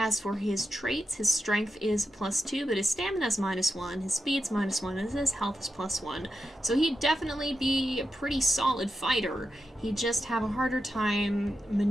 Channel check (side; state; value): both; normal; correlation 0.88